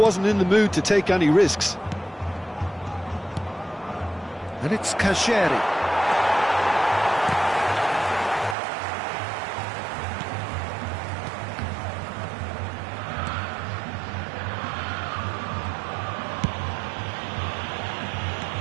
in the mood to take any risks. And it's Kashiri.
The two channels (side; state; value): left; drops out; at 8.6 s